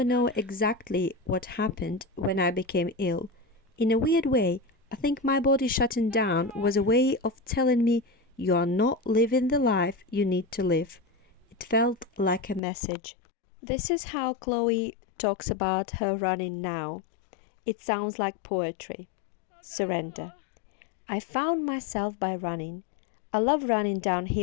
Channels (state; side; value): drops out; right; at 12.6 s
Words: know exactly what happened when I became ill, in a weird way, I think my body shutting down was a way of telling me you are not living the life you need to live. It felt like a message. This is how Chloe talks about her running now. It sounds like poetry. Surrender. I found myself by running. I love running